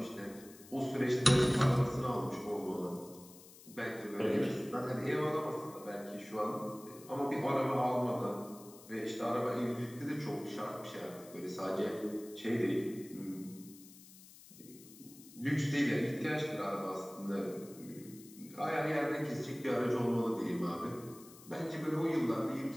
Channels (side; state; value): left; noise; hiss, 20 dB below the sound